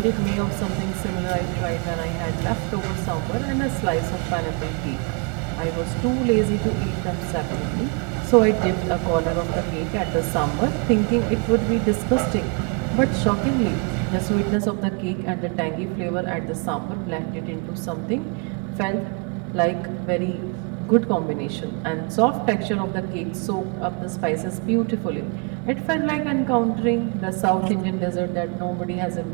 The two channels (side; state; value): left; quieter; 35.1 dB